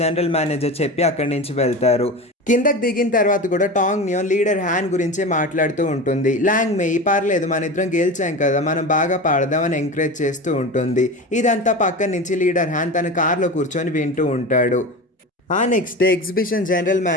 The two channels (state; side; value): normal; both; correlation 0.28